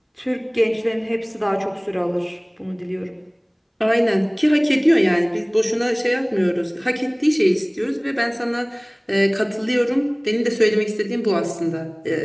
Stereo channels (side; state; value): both; identical; correlation 1.00